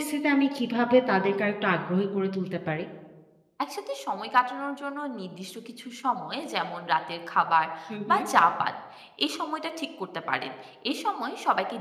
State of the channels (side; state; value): both; identical; correlation 1.00